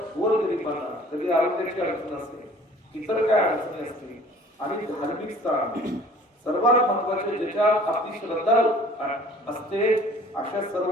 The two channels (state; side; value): normal; both; correlation 0.50